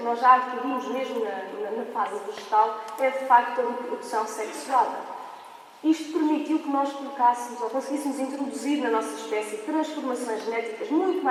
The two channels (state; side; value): identical; both; correlation 1.00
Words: nós já adquirimos mesmo na fase vegetal é, de facto, a reprodução sexuada. Isto permitiu que nós colocássemos ou conseguíssemos introduzir na nossa espécie transformações genéticas muito